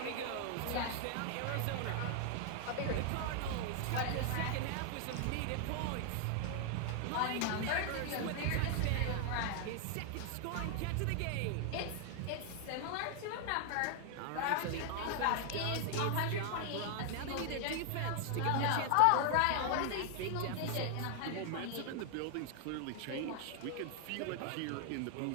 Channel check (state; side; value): different; both; correlation 0.00